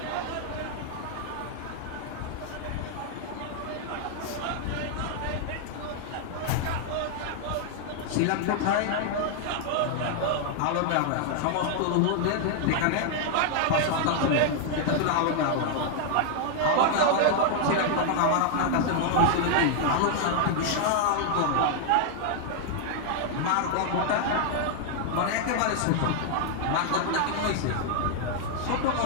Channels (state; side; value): different; both; correlation 0.00